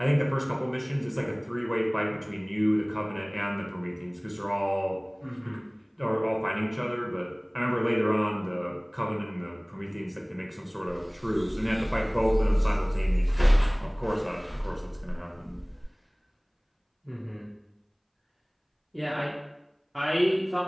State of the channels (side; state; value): both; identical; correlation 1.00